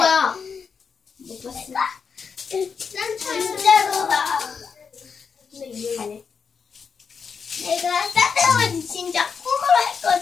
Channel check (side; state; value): right; quieter; 6.0 dB